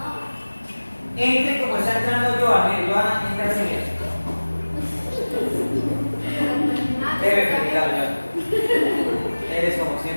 Entre como está entrando Joana. Joana, entra así mismo. Debe felicitarlo, Joana. Eres como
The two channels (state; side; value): inverted; both; correlation -1.00